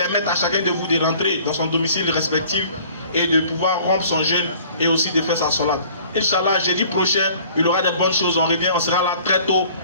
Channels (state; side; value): inverted; both; correlation -0.51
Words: à chacun de vous de rentrer dans son domicile respectif et de pouvoir rompre son jeûne et aussi de faire sa salade. Inch'Allah, jeudi prochain, il y aura des bonnes choses, on revient, on sera là très tôt,